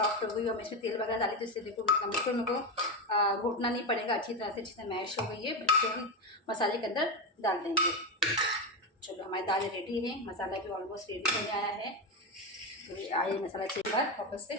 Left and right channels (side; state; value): both; normal; correlation 0.13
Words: हो गई। और मैं इसमें तेल वगैरह डाली तो इससे देखो बिल्कुल मेरे को घोटना नहीं पड़ेगा, अच्छी तरह मैश हो गई है। इसको हम मसाले के अंदर डाल देंगे। चलो हमारी दाल रेडी है, मसाला भी ऑलमोस्ट रेडी हो गया है। तो आइए मसाला चेक कर वापस से।